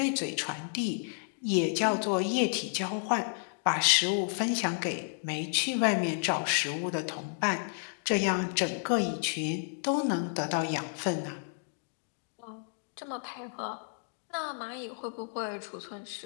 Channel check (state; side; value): silent; right; digital silence